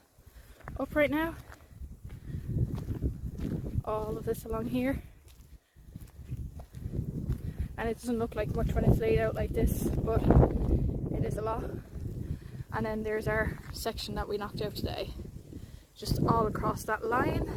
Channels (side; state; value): both; identical; correlation 1.00